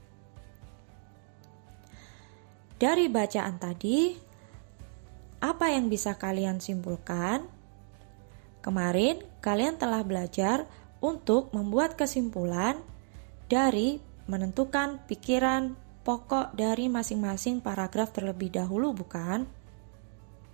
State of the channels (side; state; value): left; silent; 57 dB below the other